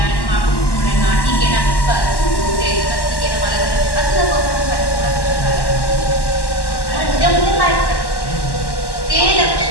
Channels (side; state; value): right; late; 1.1 ms